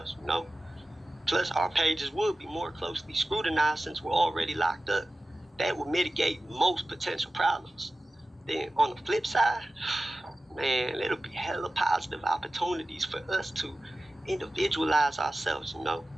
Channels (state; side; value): normal; both; correlation 0.95